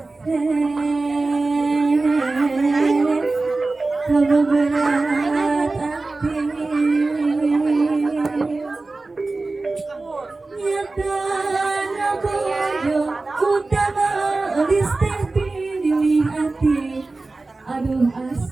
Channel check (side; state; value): left; quieter; 3.4 dB